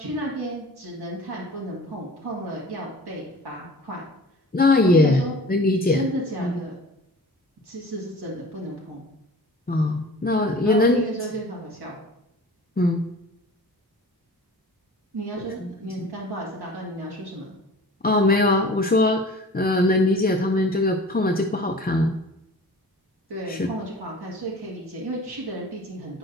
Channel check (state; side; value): normal; both; correlation 0.43